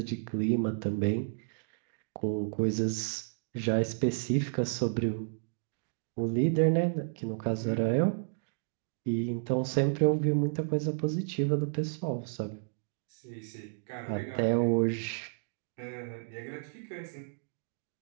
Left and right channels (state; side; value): silent; left; digital silence